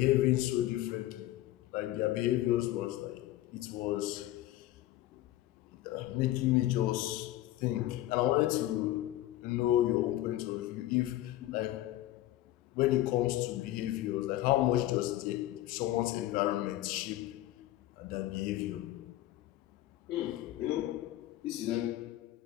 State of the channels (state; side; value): quieter; right; 15.1 dB